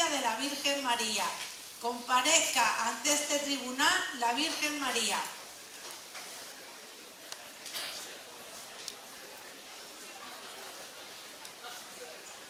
de la Virgen María. Comparezca ante este tribunal la Virgen María.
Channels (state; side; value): identical; both; correlation 1.00